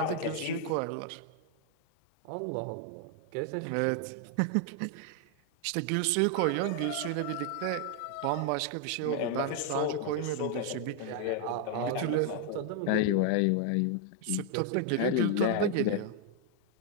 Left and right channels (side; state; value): both; different; correlation 0.00